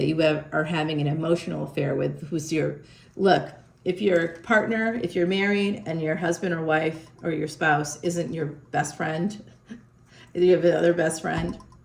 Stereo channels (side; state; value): both; identical; correlation 1.00